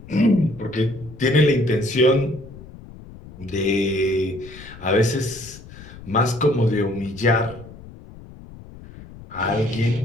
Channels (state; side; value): noise; left; rumble, 18 dB below the sound